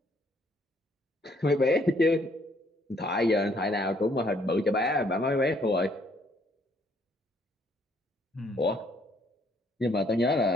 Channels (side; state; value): both; normal; correlation 0.66